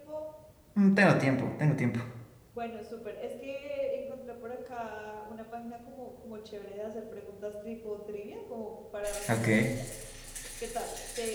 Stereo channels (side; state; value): both; identical; correlation 1.00